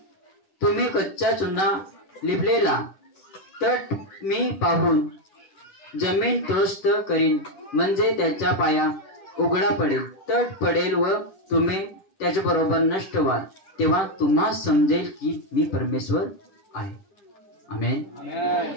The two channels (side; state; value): right; late; 10 ms